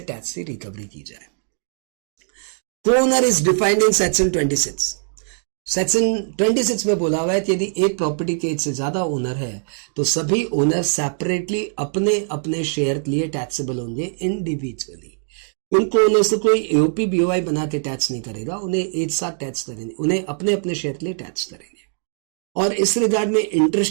टैक्स की रिकवरी की जाए। को owner is defined in section 26। Section 26 में बोला हुआ है कि यदि एक प्रॉपर्टी के एक से ज्यादा ओनर है तो सभी ओनर सेपरेटली अपने अपने शेयर के लिए टैक्सेबल होंगे इंडिविजुअली। उनको ओनर से कोई एओपी बीओआई बना के टैक्स नहीं करेगा, उन्हें एक साथ टैक्स करेंगे, उन्हें अपने अपने शेयर के लिए टैक्स करेंगे। और इस रिगार्ड में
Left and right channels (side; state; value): left; silent; digital silence